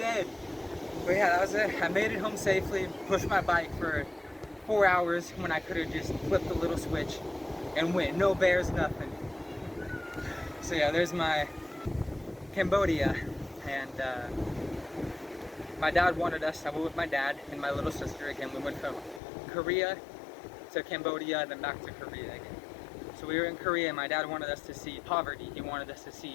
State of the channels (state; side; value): drops out; right; at 19.2 s